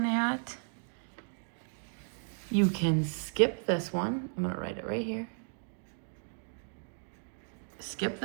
at, you can skip this one. I'm going to write it right here. Skip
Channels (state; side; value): silent; left; 55 dB below the other